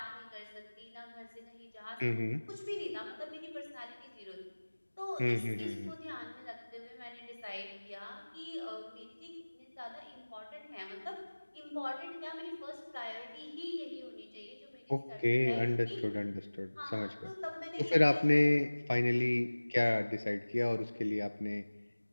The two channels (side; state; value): both; inverted; correlation -1.00